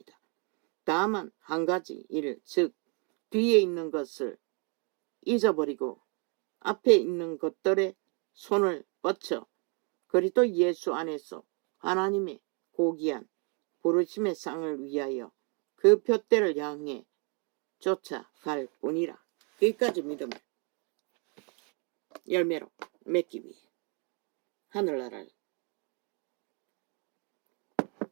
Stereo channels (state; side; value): quieter; left; 36.4 dB